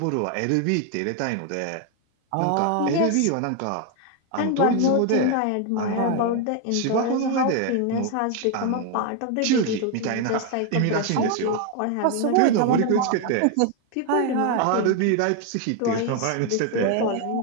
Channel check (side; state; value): both; different; correlation 0.01